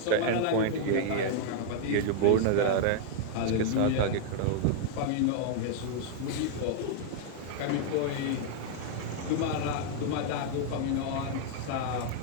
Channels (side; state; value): both; different; correlation 0.00